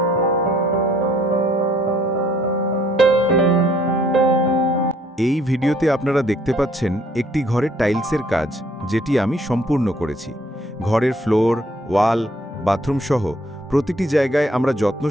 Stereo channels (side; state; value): both; normal; correlation 0.62